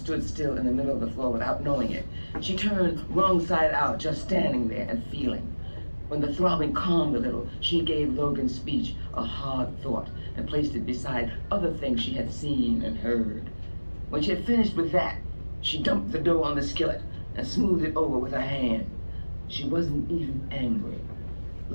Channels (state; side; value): inverted; both; correlation -1.00